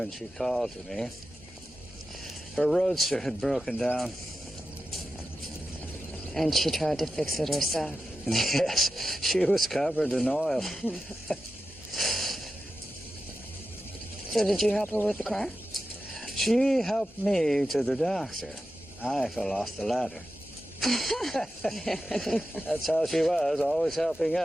she called to me. Her roadster had broken down. And she tried to fix it herself. Yes, she was covered in oil. So did you help her with the car? She helped me to the doctor. I fell off the ladder. That's how she was, always helping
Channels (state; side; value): normal; both; correlation 0.91